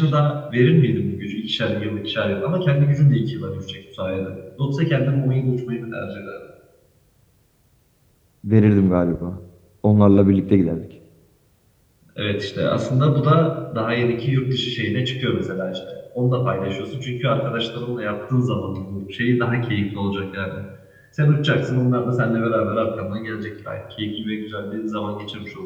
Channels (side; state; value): both; identical; correlation 1.00